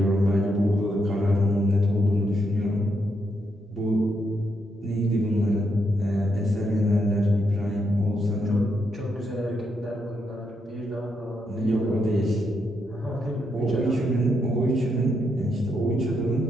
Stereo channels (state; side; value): normal; both; correlation 0.80